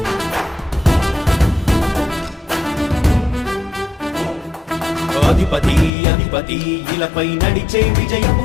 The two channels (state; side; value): drops out; right; at 5.9 s